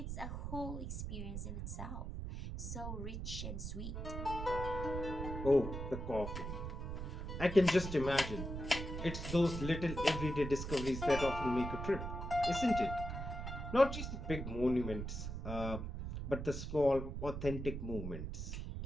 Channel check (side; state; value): right; noise; rumble, 5 dB below the sound